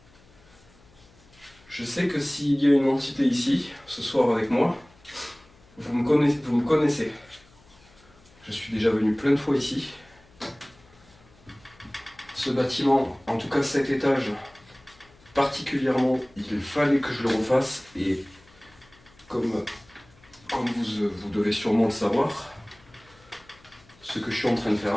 Je sais que s'il y a une entité ici, ce soir avec moi, vous me connaissez. Je suis déjà venu plein de fois ici. Ce bâtiment, en tout cas cet étage, particulièrement, il fallait que je le refasse. Et comme vous devez sûrement le savoir, ce que je suis en train de faire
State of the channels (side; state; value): left; noise; hum, 28 dB below the sound